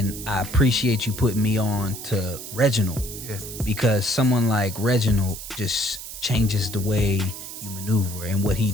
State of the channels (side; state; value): right; noise; hiss, 10 dB below the sound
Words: I appreciate you putting me on to Reginald, because someone like Reginald just changes the way you maneuver, and what he